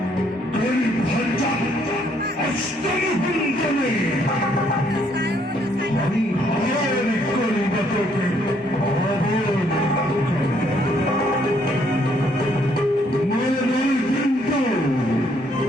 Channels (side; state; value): both; normal; correlation 0.68